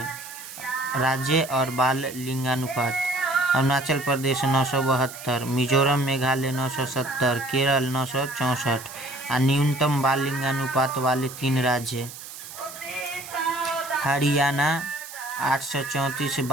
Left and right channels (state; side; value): noise; right; hiss, 13 dB below the sound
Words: राज्य और बाल लिंगानुपात: अरुणाचल प्रदेश 972, मिजोरम मेघालय 970, केरल 964। और न्यूनतम बाल लिंगानुपात वाले 3 राज्य: हरियाणा 834